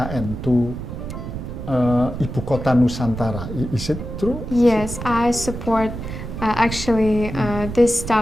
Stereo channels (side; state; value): right; noise; rumble, 8 dB below the sound